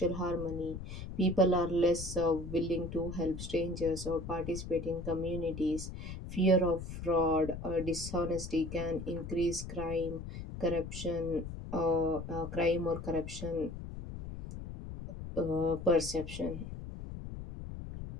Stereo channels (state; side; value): noise; left; rumble, 8 dB below the sound